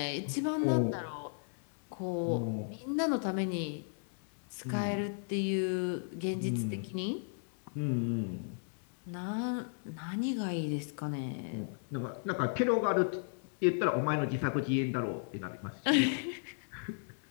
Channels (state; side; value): silent; right; 54 dB below the other